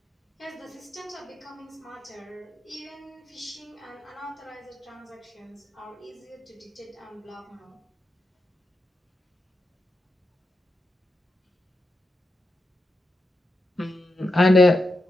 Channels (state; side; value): normal; both; correlation 0.87